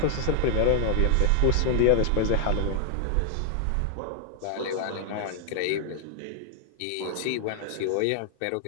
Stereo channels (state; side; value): different; both; correlation 0.00